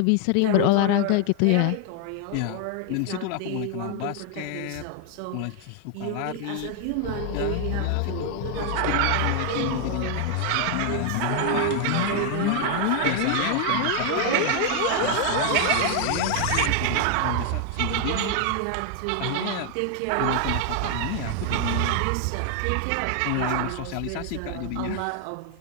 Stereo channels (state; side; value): different; both; correlation 0.00